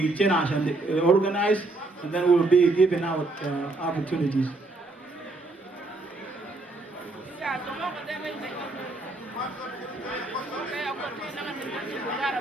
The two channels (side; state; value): left; quieter; 3.1 dB